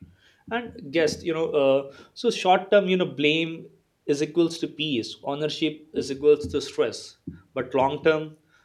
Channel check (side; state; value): both; identical; correlation 1.00